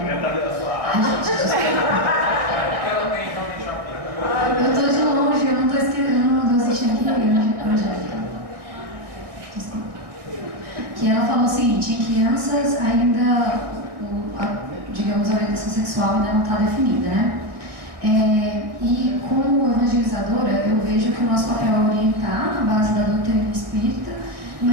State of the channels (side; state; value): left; late; 1.6 ms